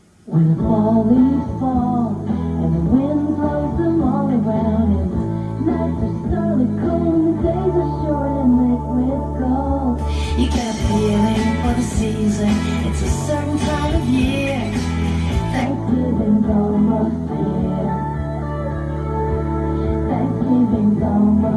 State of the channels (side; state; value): both; identical; correlation 1.00